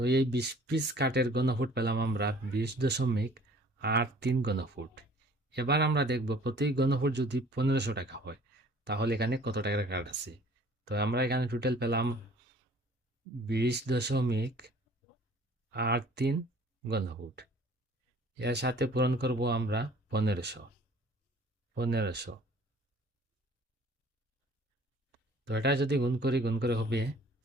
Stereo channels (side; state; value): both; normal; correlation 0.52